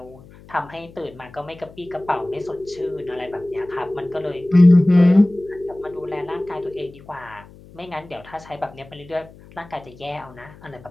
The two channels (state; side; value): noise; left; hum, 22 dB below the sound